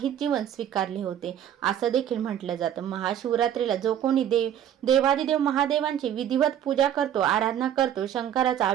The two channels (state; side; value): quieter; left; 10.3 dB